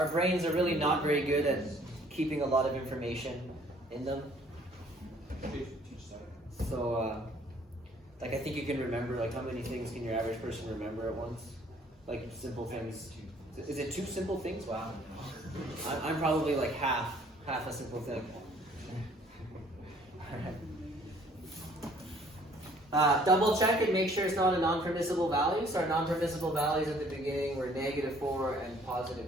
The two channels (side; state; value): both; normal; correlation 0.58